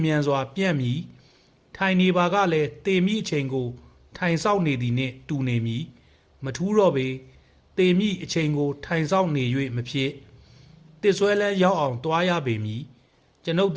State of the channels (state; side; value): identical; both; correlation 1.00